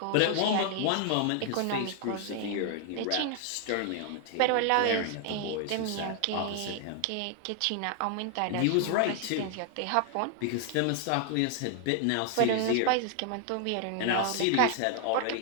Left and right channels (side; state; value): both; different; correlation 0.00